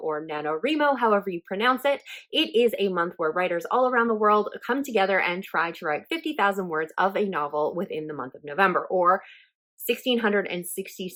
or Nanowrimo, however you pronounce it, it is a month where writers all around the world come together and try to write 50,000 words of a novel within the month of November, or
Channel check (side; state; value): both; identical; correlation 1.00